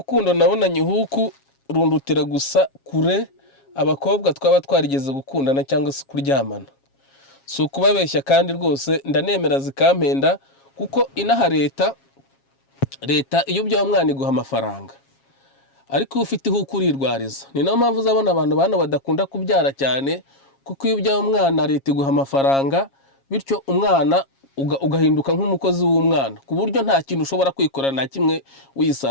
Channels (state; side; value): late; right; 7.3 ms